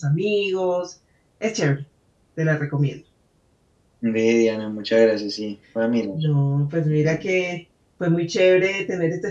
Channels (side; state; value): both; identical; correlation 1.00